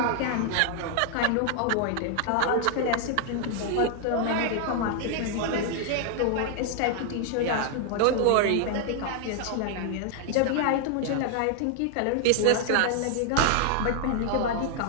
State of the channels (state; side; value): different; both; correlation 0.00